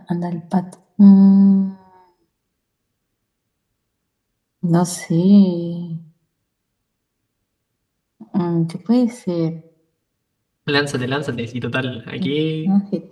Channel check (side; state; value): both; identical; correlation 1.00